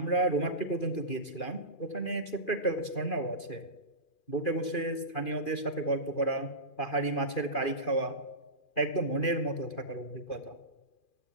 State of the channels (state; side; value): late; right; 2.4 ms